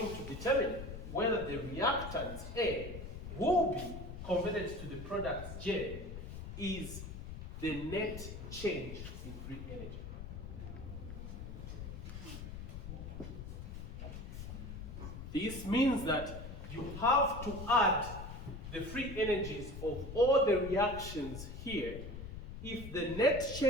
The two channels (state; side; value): noise; left; rumble, 9 dB below the sound